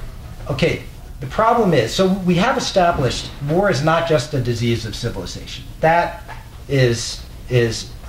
Okay, the problem is, so we have established war is not just a disease of civilization. That has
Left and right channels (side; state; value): both; identical; correlation 1.00